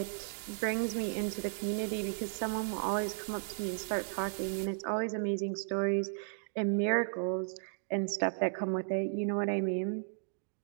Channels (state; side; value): silent; left; digital silence